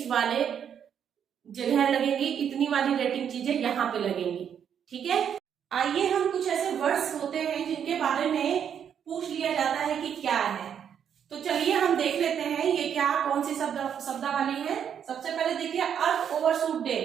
वाले जगह लगेंगी, इतनी वाली रेटिंग चीजें यहाँ पे लगेंगी, ठीक है। आइए हम कुछ ऐसे वर्ड्स होते हैं जिनके बारे में पूछ लिया जाता है कि क्या है, तो चलिए हम देख लेते हैं ये क्या कौन सी शब्दावली है। सबसे पहले देखिए अर्थ ओवरशूट डे,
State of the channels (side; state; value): left; quieter; 8.4 dB